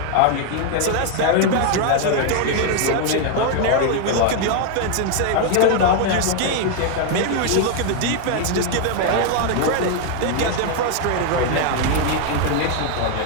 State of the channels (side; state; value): both; different; correlation 0.00